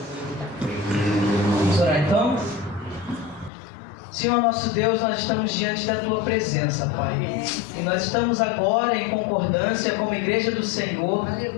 Vamos orar então? Senhor nosso Deus, nós estamos diante da Tua presença, Pai. E nós estamos agora em concordância como Igreja do Senhor,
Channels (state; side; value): drops out; right; at 3.5 s